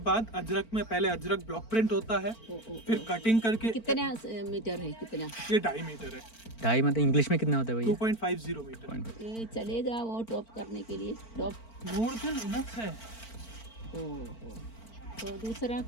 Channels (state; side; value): late; right; 4.4 ms